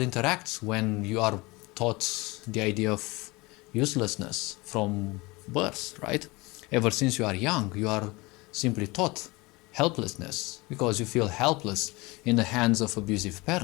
interact when you are taught the idea of uselessness from birth, right? Ever since you are young, you are simply taught helplessness because you feel helpless in the hands of abusive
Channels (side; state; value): right; quieter; 23.8 dB